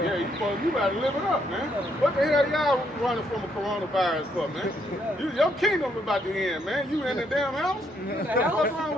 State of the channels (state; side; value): normal; both; correlation 0.73